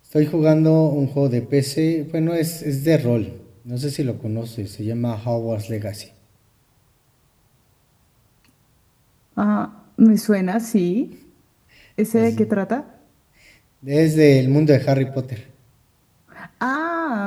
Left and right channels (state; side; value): identical; both; correlation 1.00